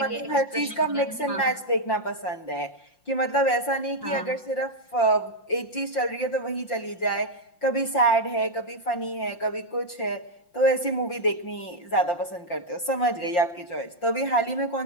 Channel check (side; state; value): right; late; 5.7 ms